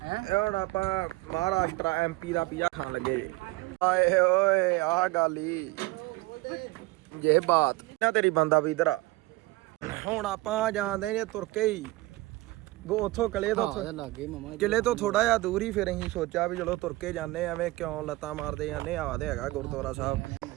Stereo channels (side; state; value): left; quieter; 20.1 dB